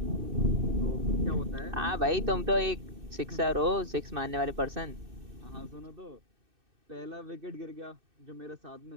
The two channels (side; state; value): left; late; 2.6 ms